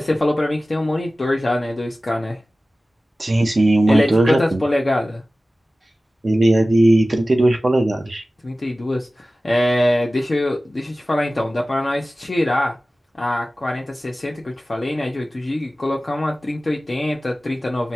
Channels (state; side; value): normal; both; correlation 0.96